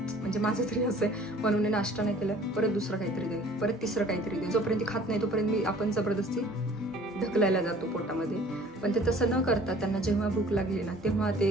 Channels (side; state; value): both; normal; correlation 0.51